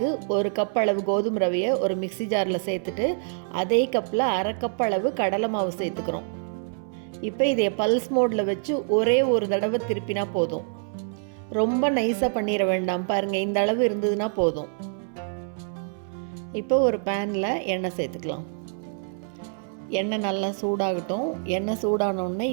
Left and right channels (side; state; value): left; silent; 61 dB below the other